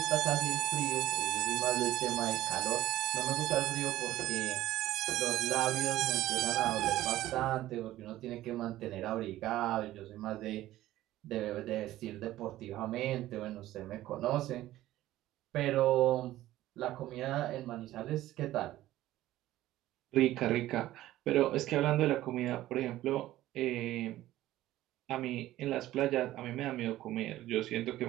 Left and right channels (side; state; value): left; quieter; 15.0 dB